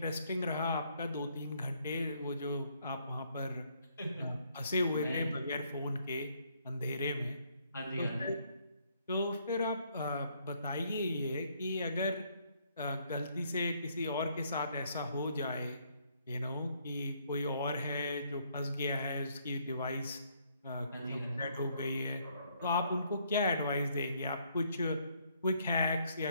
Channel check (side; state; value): both; inverted; correlation -0.68